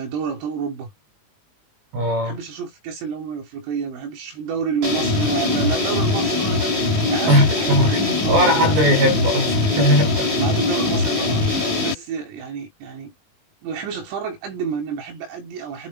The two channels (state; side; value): late; left; 19 ms